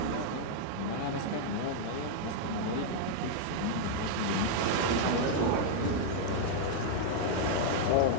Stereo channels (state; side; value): different; both; correlation -0.01